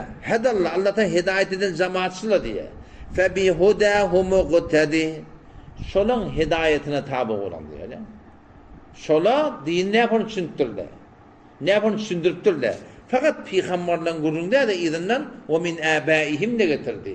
Hadallah Allah'tan hidayet eden cemaatçılar diye. Fe bi hudahum muqtadi. Şolun hidayetine tabi olan diye. Şola din ne yapın düşündürler. Ne yapın düşündürtürler. Fakat peygamberlerin gurrunda da izinden ve min abaihim de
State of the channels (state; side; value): identical; both; correlation 1.00